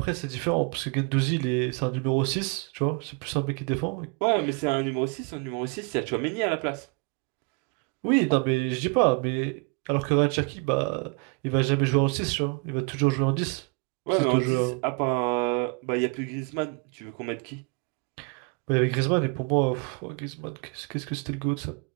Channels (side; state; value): left; quieter; 32.3 dB